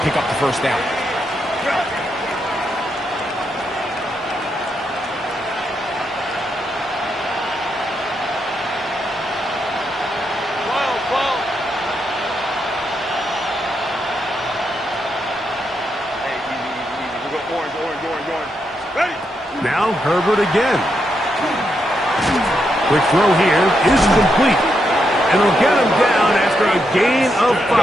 pick up the first down. Now Herbert again. Quick throw here is complete. And he'll get him down after a gain of 5,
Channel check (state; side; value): normal; both; correlation 0.81